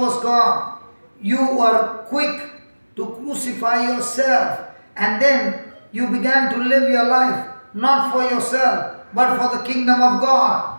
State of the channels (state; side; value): inverted; both; correlation -1.00